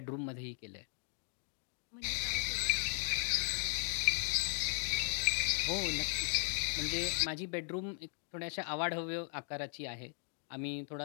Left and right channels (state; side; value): silent; right; 53 dB below the other